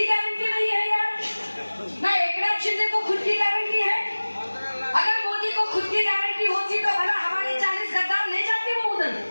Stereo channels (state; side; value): inverted; both; correlation -1.00